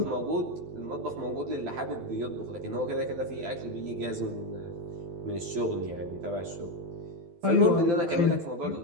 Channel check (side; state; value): left; late; 12 ms